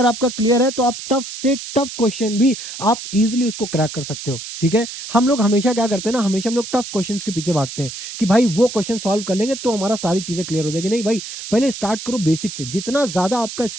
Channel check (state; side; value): noise; right; hiss, 9 dB below the sound